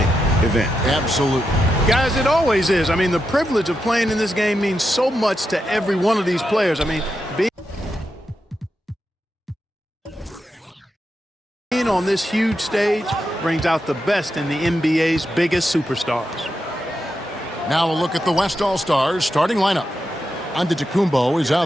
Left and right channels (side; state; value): both; normal; correlation 0.86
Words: event. Absolutely. Guys, it always is. I mean, the privilege of playing in this game means so much to every one of these players. I mean, being on this huge stage brings out the best in the NBA's biggest superstars. Now a look at the West All-Stars starting lineup. Antetokounmpo is